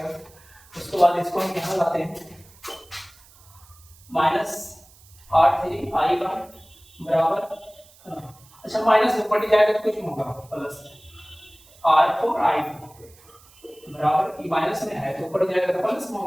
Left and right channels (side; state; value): right; noise; hiss, 26 dB below the sound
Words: उसके बाद इसको हम यहाँ लाते हैं -R3 I1 बराबर, अच्छा माइनस ऊपर जाएगा तो कुछ नहीं होगा, प्लस R4 I2 बराबर, ये माइनस में है तो ऊपर जाएगा तो प्लस में